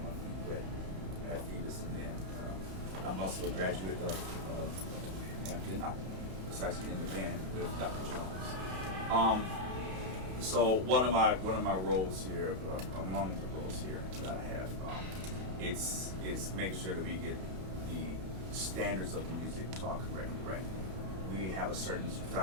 my feet wet at Phoebus. And then I'm also a graduate of Hampton. I was actually in the band with Dr. Jones. So one of my roles here, among the roles here that I have, it's making sure that we get the standards of the music taught correctly, right? We have a certain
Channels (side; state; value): left; late; 32 ms